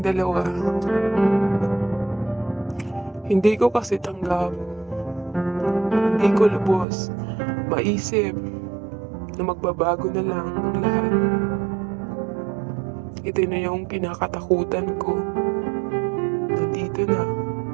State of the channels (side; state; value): left; drops out; at 6.9 s